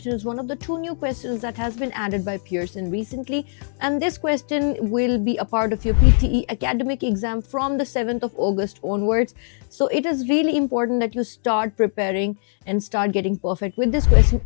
is one of the two new questions that has been added by Pearson recently, and this question will be a part of your PTE Academic exam from the 7th of August onwards. So it is really important that you start preparing and start getting perfect with this question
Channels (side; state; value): right; silent; digital silence